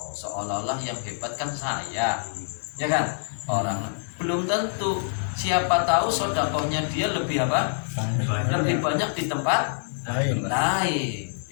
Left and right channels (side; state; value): right; silent; digital silence